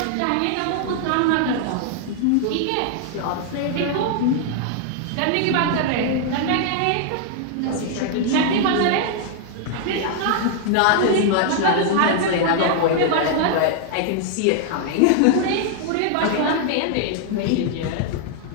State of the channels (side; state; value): both; different; correlation 0.00